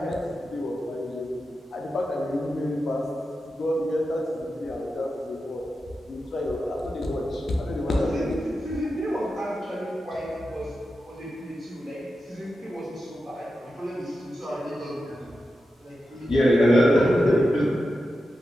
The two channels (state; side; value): normal; both; correlation 0.90